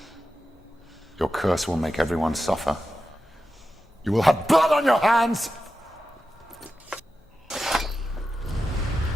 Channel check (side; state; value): both; normal; correlation 0.91